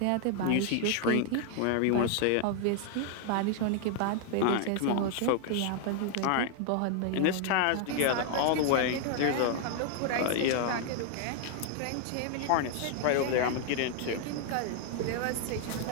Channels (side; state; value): both; different; correlation 0.00